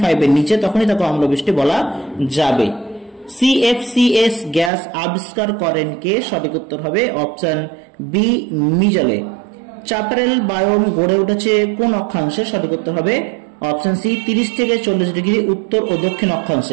এর নিচে তখনই তাকে অম্লবৃষ্টি বলা যাবে। সিএফসিএস গ্যাস আবিষ্কার করেন কে? সঠিক উত্তর হবে অপশন বি মিজেলে। চ্যাপারেল বায়োম গড়ে উঠেছে কোন অক্ষাংশে? সঠিক উত্তর হবে অপশন সি 30 থেকে 40 ডিগ্রি উত্তর ও দক্ষিণ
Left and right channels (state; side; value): drops out; left; at 4.7 s